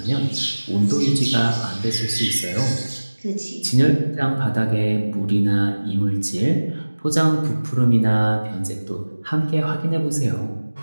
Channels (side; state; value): both; inverted; correlation -1.00